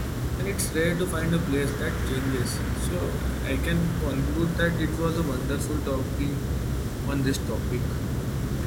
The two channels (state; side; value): identical; both; correlation 1.00